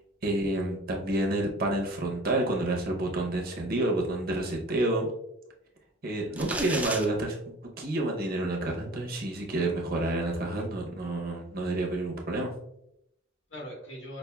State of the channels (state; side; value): normal; both; correlation 0.46